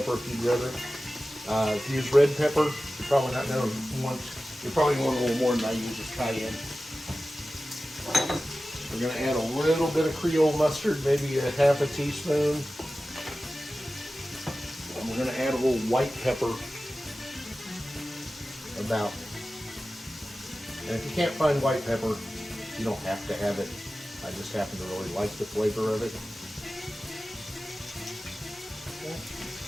if you'd rather. If you use red pepper, you're probably not going to want, you probably want a little more than I use with cayenne. We're going to add a little bit of Creole mustard, maybe a half a teaspoon. And we're going to add a little white pepper, about. And if you can't find white pepper, you don't have to have it. I just happen to really like the flavor of it.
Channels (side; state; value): both; normal; correlation 0.95